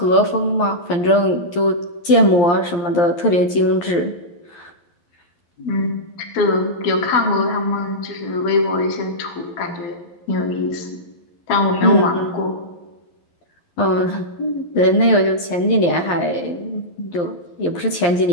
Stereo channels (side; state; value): right; late; 11 ms